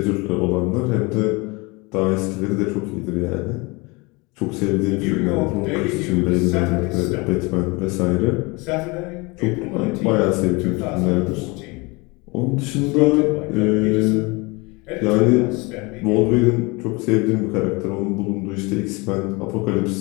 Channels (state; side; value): quieter; right; 26.4 dB